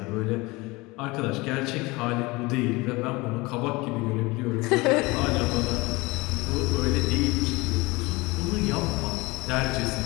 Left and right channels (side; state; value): right; quieter; 23.2 dB